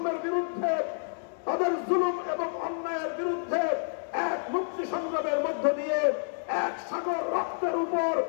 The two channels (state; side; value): silent; right; digital silence